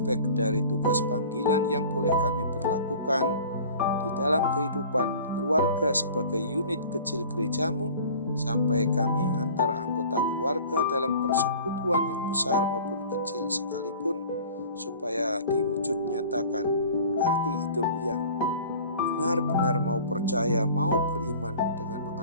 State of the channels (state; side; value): inverted; both; correlation -0.45